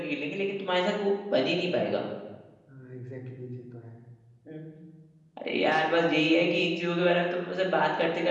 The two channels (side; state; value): both; identical; correlation 1.00